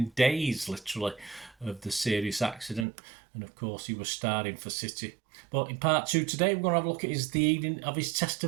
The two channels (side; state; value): left; drops out; at 2.9 s